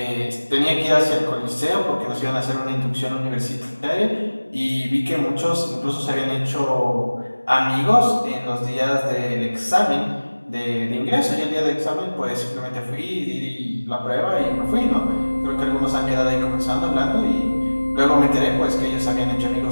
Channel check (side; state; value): both; inverted; correlation -1.00